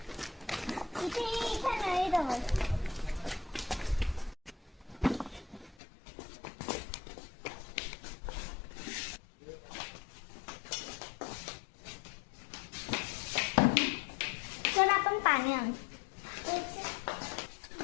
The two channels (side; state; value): right; drops out; at 5.8 s